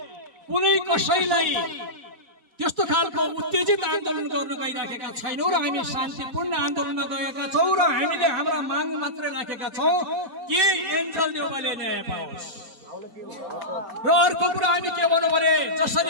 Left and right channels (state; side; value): late; left; 4.1 ms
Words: कुनै कसैलाई त्यस्तो खालको उत्तेजित आन्दोलन गर्न गइराखेका छैनौं र हामी शान्तिपूर्ण आन्दोलनमा गएका छौं र हामीले हाम्रा माग मात्रै राखेका छौं कि एन्जल देउवाले न्याय पाओस्। र अर्को कुरा हामी के भन्नु भने